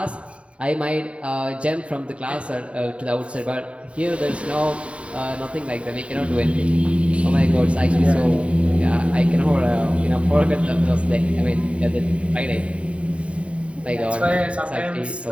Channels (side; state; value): left; late; 0.062 ms